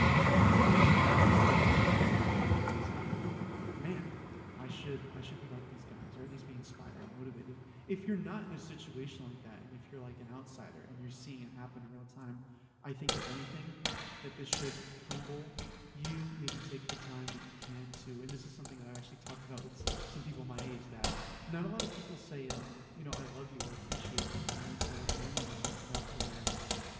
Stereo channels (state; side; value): identical; both; correlation 1.00